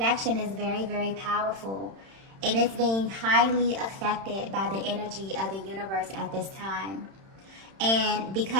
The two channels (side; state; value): left; late; 31 ms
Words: is very, very powerful, and it's being highly affected by the energy of the universe at this time. And